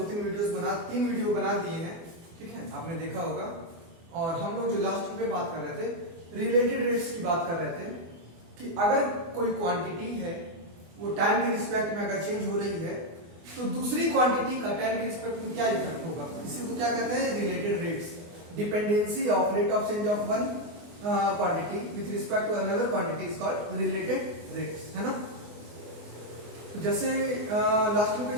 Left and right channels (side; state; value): left; late; 24 ms